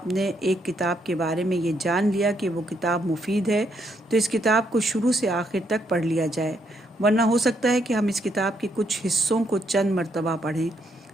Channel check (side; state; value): both; normal; correlation 0.75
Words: نے ایک کتاب کے بارے میں یہ جان لیا کہ وہ کتاب مفید ہے تو اس کتاب کو شروع سے آخر تک پڑھ لیا جائے، ورنہ ہو سکتا ہے کہ ہم اس کتاب کے کچھ حصوں کو چند مرتبہ پڑھیں